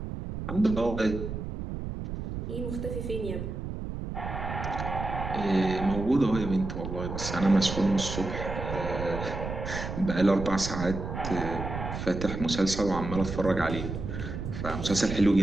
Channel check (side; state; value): right; noise; rumble, 6 dB below the sound